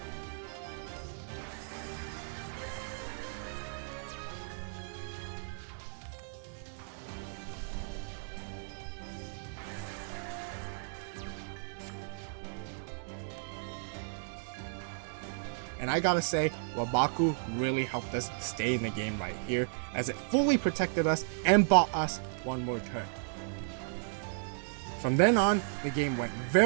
And I gotta say, Wabaku really helped us stay in the game right here, as it fully protected us and bought us one more turn. From then on, the game went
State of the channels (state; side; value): silent; left; digital silence